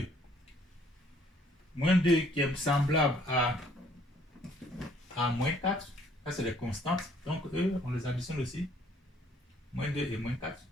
Moins 2 qui est semblable à moins 4. Ça, c'est les constantes. Donc, eux, on les additionne aussi. Moins 2 et moins 4.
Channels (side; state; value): both; normal; correlation 0.62